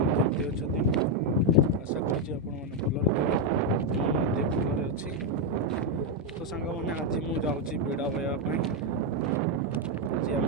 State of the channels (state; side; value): normal; both; correlation 0.03